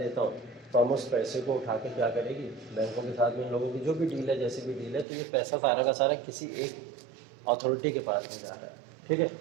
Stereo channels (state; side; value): drops out; left; at 5.1 s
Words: हूँ तो हम उस पैसे को उठा के क्या करेगी, बैंकों के साथ में इन लोगों की जो भी डील है, जैसी भी डील है, तो ये पैसा सारा का सारा किसी एक अथॉरिटी के पास में जा रहा है, ठीक है।